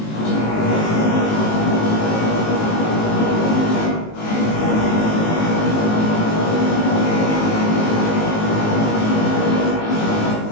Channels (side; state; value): right; late; 19 ms